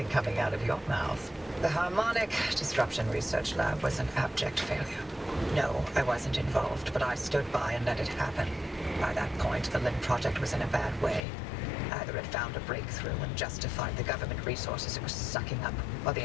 coming out of your mouth. The Harmonic Disruption Research Lab was an abject failure. No, I wasn't involved, but I stood by and let it happen. By that point, the LIM project was in a bad way. Either it found a breakthrough and justified the government resources it was sucking up, or the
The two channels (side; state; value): right; drops out; at 11.2 s